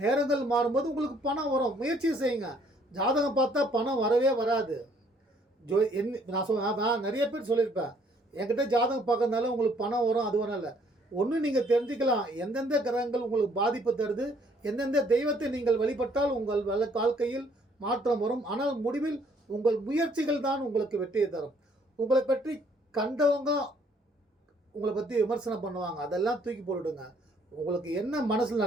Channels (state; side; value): normal; both; correlation 0.64